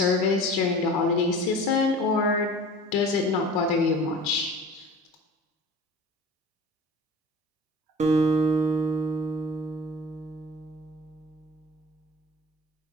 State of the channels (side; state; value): both; normal; correlation 0.40